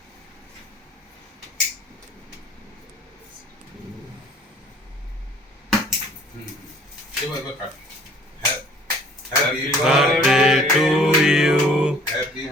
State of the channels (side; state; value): both; normal; correlation 0.54